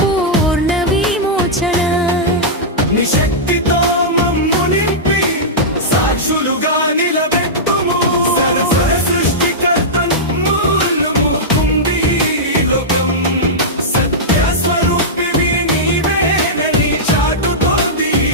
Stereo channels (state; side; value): normal; both; correlation -0.11